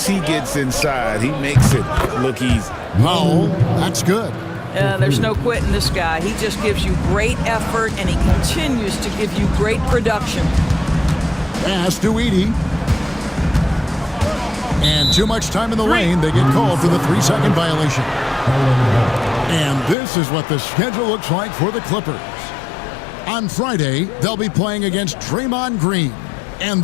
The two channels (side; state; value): right; drops out; at 20.0 s